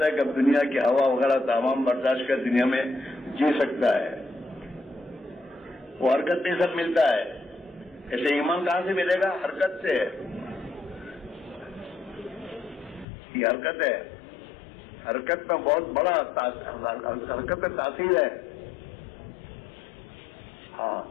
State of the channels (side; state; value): right; drops out; at 13.1 s